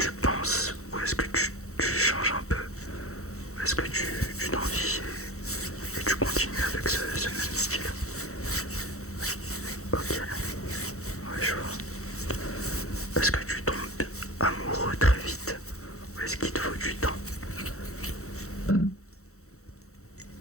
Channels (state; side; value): late; right; 0.64 ms